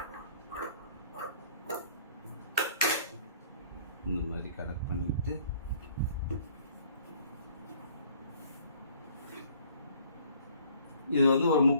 இந்த மாதிரி கனெக்ட் பண்ணிக்கிட்டு இது வந்து ஒரு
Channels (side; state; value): both; inverted; correlation -0.57